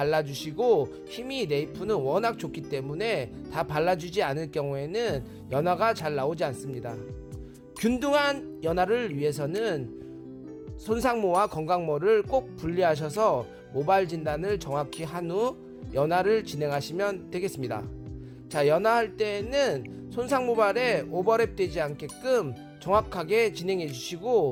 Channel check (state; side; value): identical; both; correlation 1.00